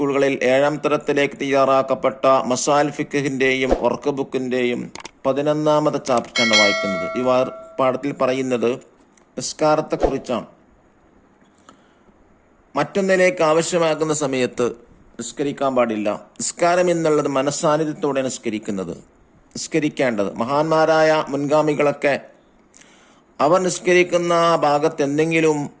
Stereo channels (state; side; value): identical; both; correlation 1.00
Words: 7ാം തരത്തിലേക്ക് തയ്യാറാക്കപ്പെട്ട മസാൽ ഫിഖ്ഹിന്റെയും വർക്ക് ബുക്കിന്റെയും 11ാമത്തെ ചാപ്റ്ററാണ് വായിക്കുന്നത്. ഈ പാഠത്തിൽ പറയുന്നത് നിസ്കാരത്തെക്കുറിച്ചാണ്. മറ്റൊന്നിലേക്ക് ആവശ്യമാകുന്ന സമയത്ത് നിസ്കരിക്കാൻ പാടില്ല. നിസ്കാരം എന്നുള്ളത് മനസ്സാന്നിധ്യത്തോടെ നിസ്കരിക്കേണ്ടത്. മഹാന്മാരായ മുൻഗാമികളൊക്കെ അവർ നിസ്കരിക്കുന്ന ഭാഗത്ത് എന്തെങ്കിലും